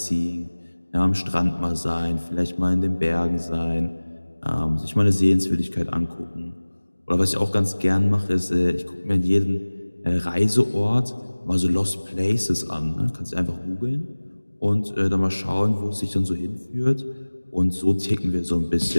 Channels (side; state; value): both; inverted; correlation -1.00